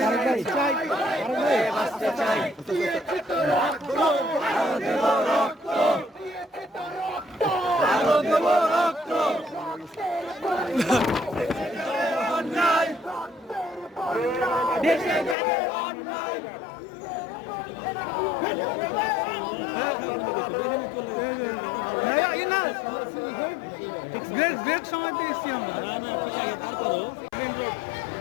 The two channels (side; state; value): right; drops out; at 15.4 s